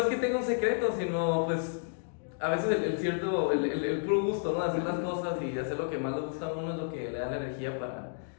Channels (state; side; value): silent; right; digital silence